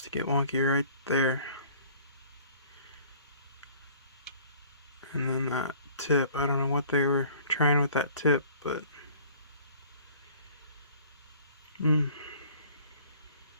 to get wonky right there. And then that tip, I don't know what they were trying with that tip, but now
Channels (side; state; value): both; inverted; correlation -0.52